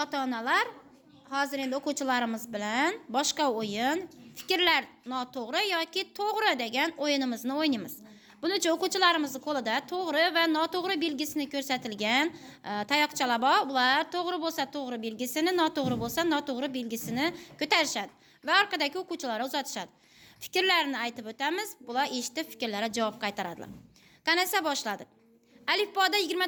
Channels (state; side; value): identical; both; correlation 1.00